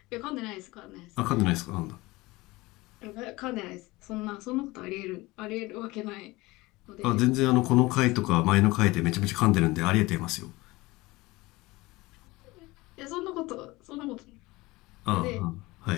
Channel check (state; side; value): quieter; right; 21.1 dB